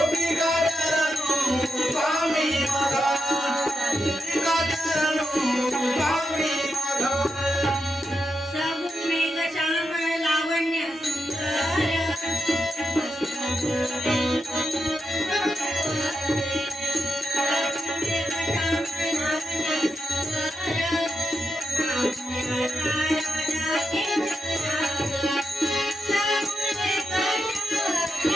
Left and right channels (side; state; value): both; normal; correlation 0.86